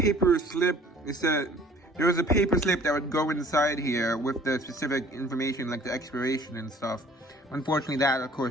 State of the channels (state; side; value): normal; both; correlation 0.53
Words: slip. It said there was a paper slip that would go inside here with the specific information, like the expiration and stuff. Unfortunately, that, of